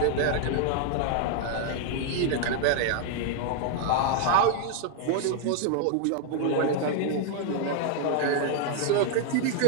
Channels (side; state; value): both; different; correlation 0.00